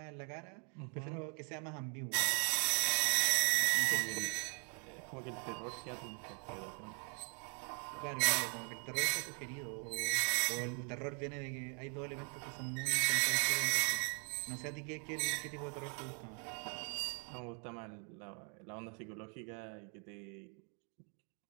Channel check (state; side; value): quieter; left; 39.4 dB